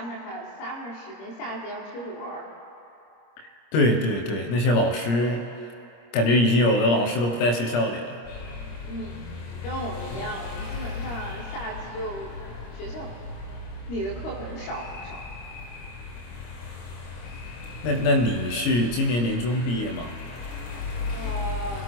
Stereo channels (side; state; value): right; late; 25 ms